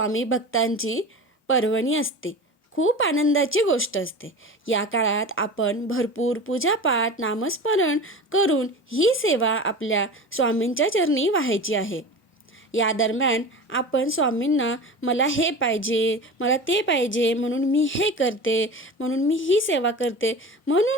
भक्तांची पर्वणी असते. खूप आनंदाची गोष्ट असते. या काळात आपण भरपूर पूजापाठ, नामस्मरण करून ही सेवा आपल्या स्वामींच्या चरणी वाहायची आहे. या दरम्यान आपण स्वामींना मला हे पाहिजे, मला ते पाहिजे म्हणून मी हे करते, म्हणून मी ही सेवा करते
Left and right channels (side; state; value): both; normal; correlation 0.32